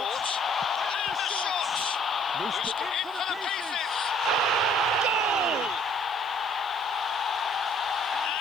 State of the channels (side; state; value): right; noise; hiss, 27 dB below the sound